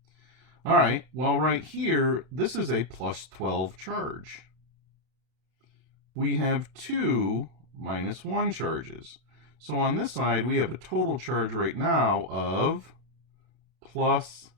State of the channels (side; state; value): left; late; 32 ms